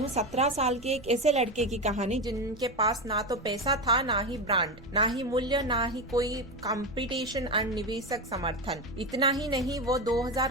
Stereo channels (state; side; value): noise; right; rumble, 20 dB below the sound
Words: 17 साल के एक ऐसे लड़के की कहानी जिनके पास ना तो पैसा था, ना ही ब्रांड, ना ही मूल्य, ना ही कोई कंपटीशन और निवेशक समर्थन। इतना ही नहीं, वो